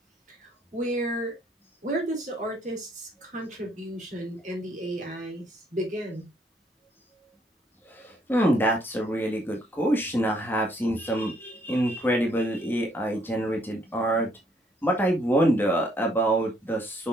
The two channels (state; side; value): normal; both; correlation 0.68